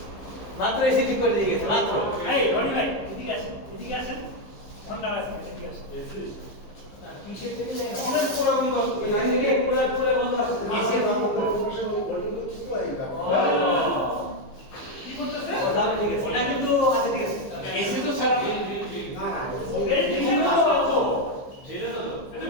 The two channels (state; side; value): late; right; 15 ms